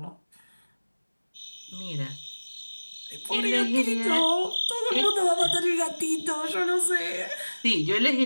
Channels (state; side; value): inverted; both; correlation -1.00